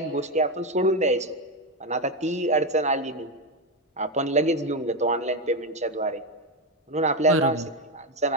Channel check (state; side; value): normal; both; correlation 0.10